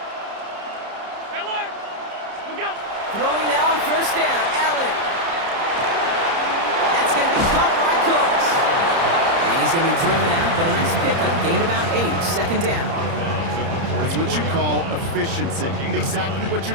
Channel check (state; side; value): late; left; 30 ms